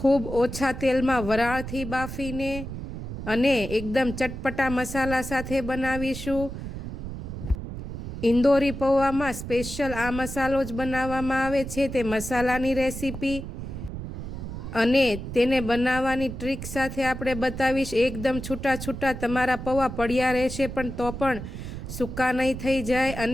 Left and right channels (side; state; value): right; noise; rumble, 8 dB below the sound